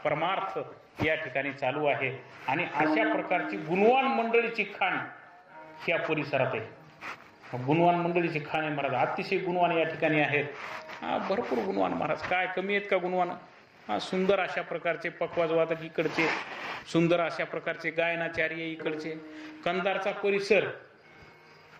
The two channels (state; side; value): identical; both; correlation 1.00